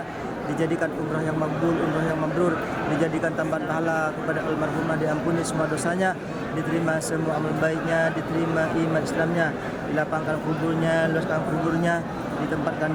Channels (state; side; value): identical; both; correlation 1.00